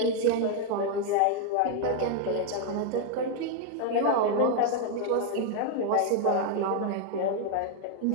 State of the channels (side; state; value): both; different; correlation 0.00